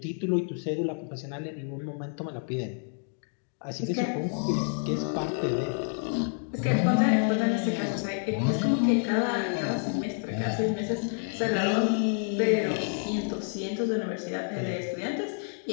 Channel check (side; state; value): right; silent; 59 dB below the other